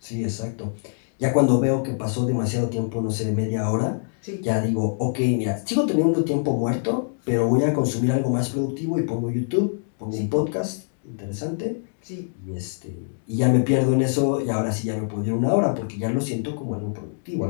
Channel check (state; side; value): silent; right; digital silence